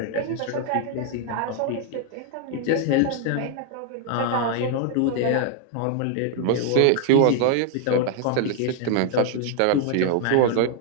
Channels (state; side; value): different; both; correlation 0.00